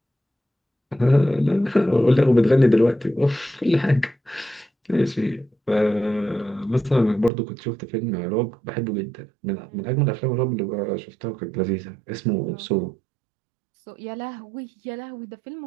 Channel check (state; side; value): drops out; left; at 7.3 s